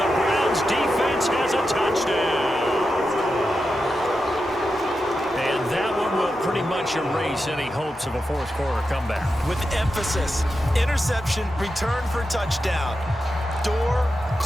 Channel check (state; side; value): normal; both; correlation 0.89